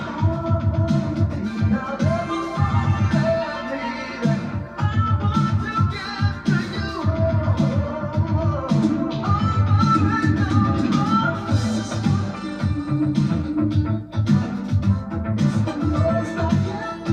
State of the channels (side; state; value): both; identical; correlation 1.00